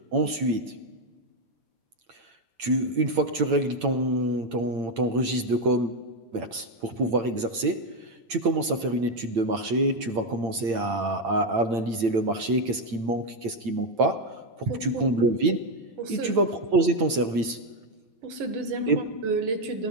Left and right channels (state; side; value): late; left; 8.9 ms